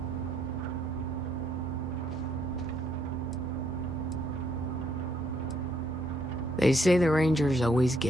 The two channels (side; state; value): both; normal; correlation 0.71